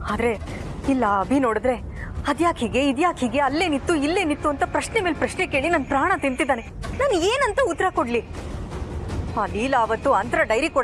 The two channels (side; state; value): both; identical; correlation 1.00